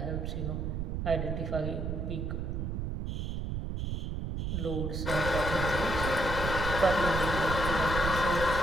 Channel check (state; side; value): noise; right; rumble, 2 dB below the sound